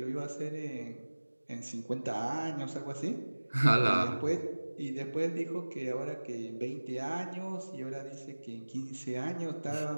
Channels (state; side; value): inverted; both; correlation -1.00